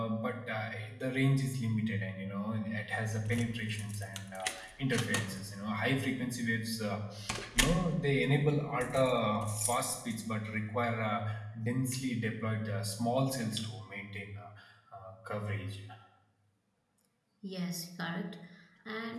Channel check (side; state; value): both; identical; correlation 1.00